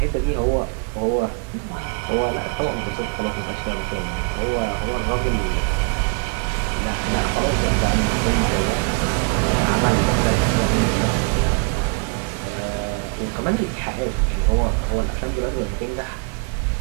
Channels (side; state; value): left; quieter; 39.2 dB